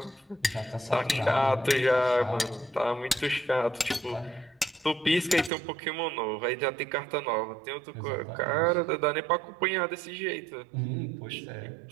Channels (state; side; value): drops out; left; at 5.5 s